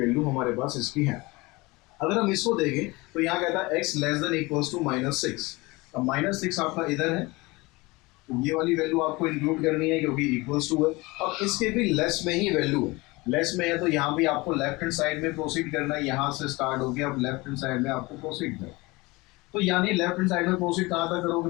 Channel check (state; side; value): quieter; right; 23.3 dB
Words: हमारे पास इसकी है। अगर हम इसको देखें तो यहाँ कहता है x <= -6। अब -6 आपका इधर है, तो ये वाली वैल्यू आपको इंक्लूड करनी है क्योंकि इक्वल्स टू है। अब इसके भी लेस में ही वैल्यू है, लेस में है तो यहाँ भी आपको लेफ्ट हैंड साइड में प्रोसीड करना है। यहाँ से स्टार्ट हो गया, अब लेफ्ट हैंड साइड में आपको प्रोसीड करना है। तो यानी लेफ्ट हैंड साइड में प्रोसीड कहाँ तक करोगे